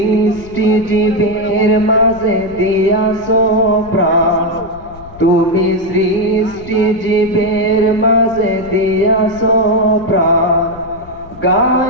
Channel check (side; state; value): left; noise; rumble, 19 dB below the sound